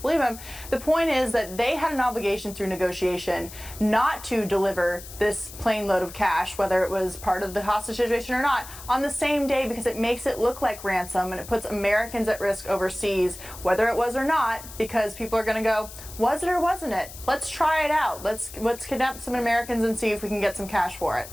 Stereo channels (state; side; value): noise; left; hiss, 15 dB below the sound